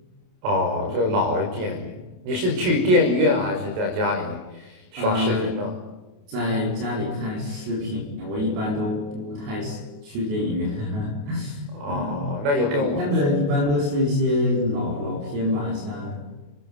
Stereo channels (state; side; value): late; left; 28 ms